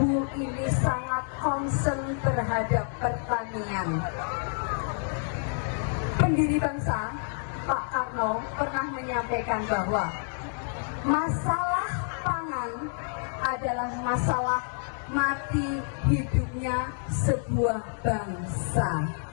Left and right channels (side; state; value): right; silent; 59 dB below the other